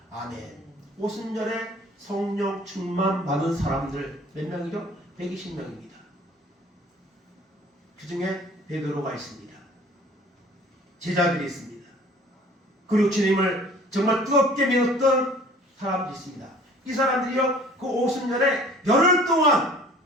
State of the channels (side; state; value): both; normal; correlation 0.50